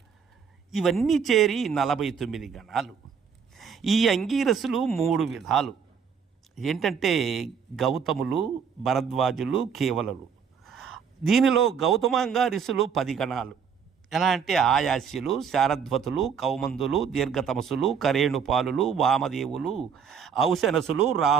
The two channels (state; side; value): quieter; left; 6.8 dB